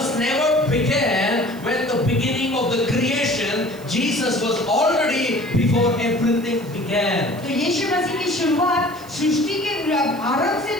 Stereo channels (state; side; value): noise; right; hiss, 22 dB below the sound